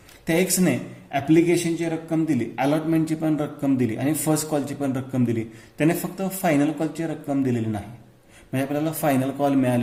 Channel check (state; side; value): identical; both; correlation 1.00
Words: त्या एक्सने ॲप्लिकेशनची रक्कम दिली, अलॉटमेंटची पण रक्कम दिली आणि फर्स्ट कॉलची पण रक्कम दिली. त्याने फक्त फायनल कॉलची रक्कम दिलेली नाही, म्हणजे आपल्याला फायनल कॉल